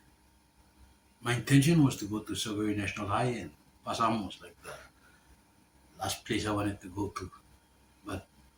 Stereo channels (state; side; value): identical; both; correlation 1.00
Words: intention was to go to Soguri National High, and Passam was like the last place I wanted to go to. But